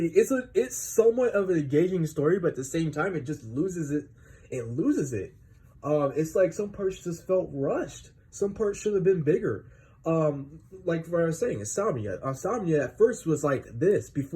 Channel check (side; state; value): both; identical; correlation 1.00